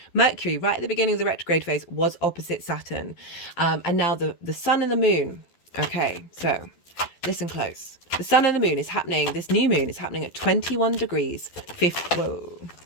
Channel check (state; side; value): late; right; 12 ms